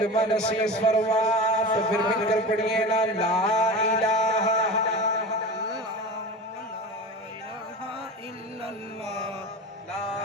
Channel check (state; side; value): normal; both; correlation 0.31